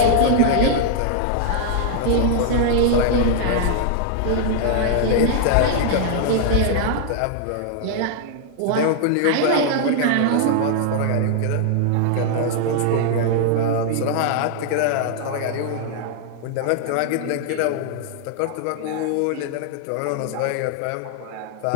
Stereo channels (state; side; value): different; both; correlation -0.01